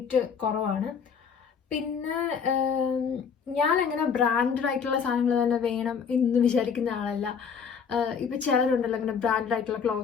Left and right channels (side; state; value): right; quieter; 6.4 dB